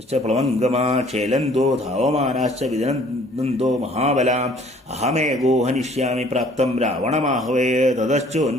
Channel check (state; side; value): normal; both; correlation 0.56